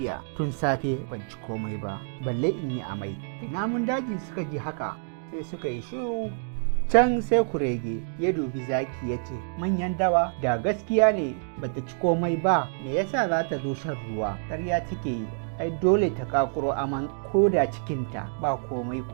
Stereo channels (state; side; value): silent; left; digital silence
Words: tun safe ban ci komai ba, balle in yi amai. Namun daji suka ji haka sai suka yi shiru. Can sai kurege ya dubi zaki ya ce, manyan dawa, da gaskiya ne bata ci komai ba, me yasa za ta zo shan ruwa? Ƙarya take yi, ai dole ta kakuro aman ko da cikinta ba komai